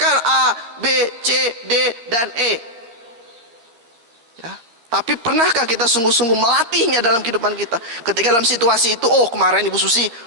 A, B, C, D, dan E. Ya, tapi pernahkah kita sungguh-sungguh melatihnya dalam kehidupan kita? Ketika dalam situasi itu, oh kemarin Ibu Susi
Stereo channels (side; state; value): left; late; 13 ms